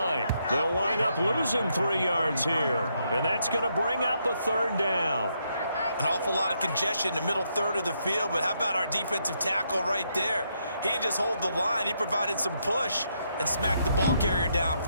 They'll wind up losing 3 yards here, and that's going to bring up a 3rd down. An awful lot of congestion in the middle third of the field, but how about our defensive tackle right there? He didn't just hold the line, he provided some push and smacked the ball carrier down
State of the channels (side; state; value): both; inverted; correlation -0.77